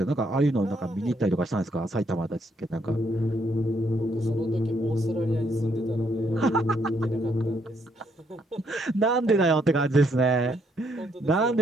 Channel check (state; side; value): normal; both; correlation 0.72